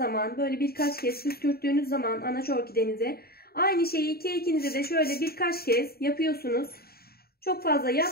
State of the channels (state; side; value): late; right; 0.45 ms